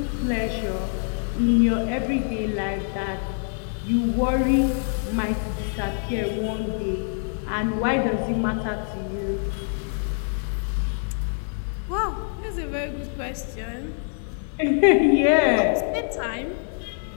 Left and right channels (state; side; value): silent; right; 62 dB below the other